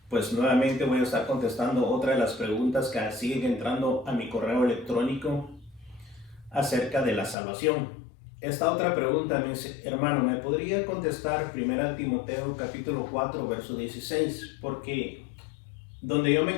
Pues nuevamente voy a estar contestando otra de las preguntas que siguen entrando a mi correo electrónico acerca de la salvación. Esta otra pregunta me dice: hermano, ¿me podría contestar 1 Timoteo capítulo 4 verso 16? Porque donde yo me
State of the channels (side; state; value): right; drops out; at 7.4 s